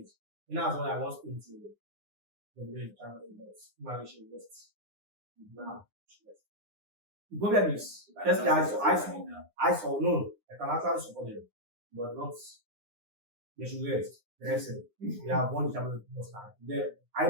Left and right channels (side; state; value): left; late; 9.8 ms